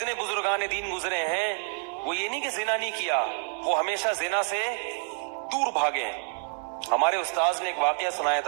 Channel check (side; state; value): left; silent; 59 dB below the other